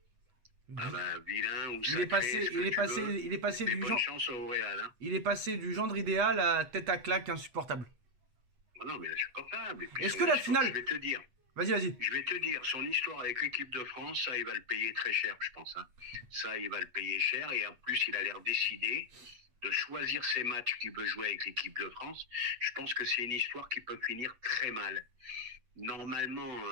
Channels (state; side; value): late; left; 8.2 ms